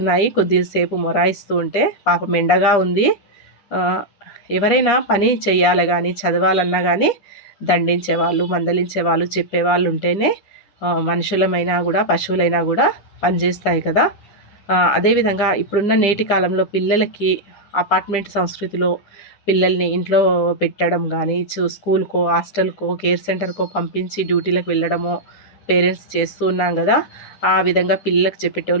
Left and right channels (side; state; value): right; late; 10 ms